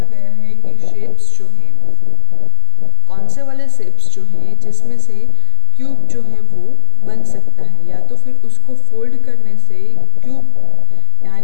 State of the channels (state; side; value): different; both; correlation 0.00